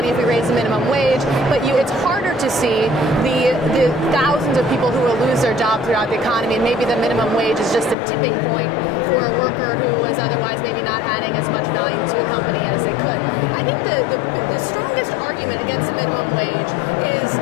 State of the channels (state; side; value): drops out; right; at 8.0 s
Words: if we raise the minimum wage, but it's harder to see the thousands of people who will lose their job throughout the economy, and maybe the minimum wage is just a tipping point for a worker who was otherwise maybe not adding as much value to a company as they could. I think the strongest argument against the minimum wage is